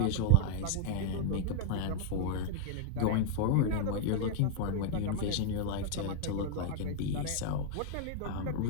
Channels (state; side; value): different; both; correlation 0.00